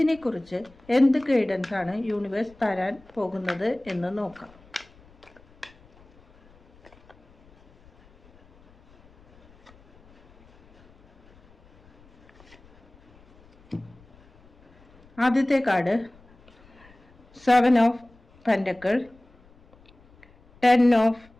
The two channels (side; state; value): left; noise; rumble, 28 dB below the sound